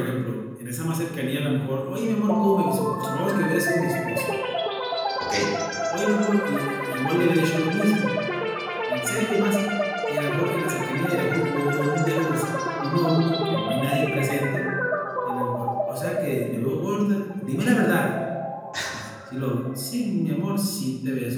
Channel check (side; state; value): both; identical; correlation 1.00